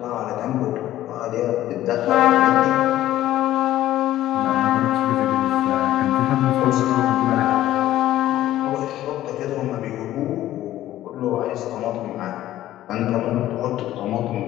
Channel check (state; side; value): quieter; right; 13.9 dB